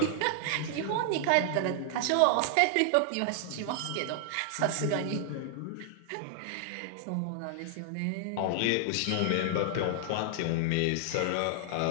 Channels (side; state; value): both; different; correlation 0.00